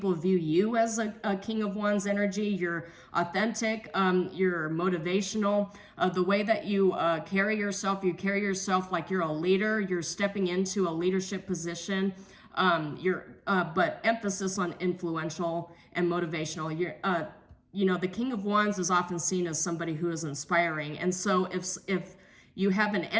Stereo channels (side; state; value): both; identical; correlation 1.00